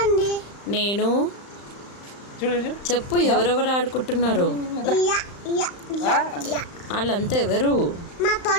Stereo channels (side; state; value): right; late; 35 ms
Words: నేను చెప్పు, ఎవరెవరు ఆడుకుంటున్నారు? వాళ్ళంతా ఎవరు? మా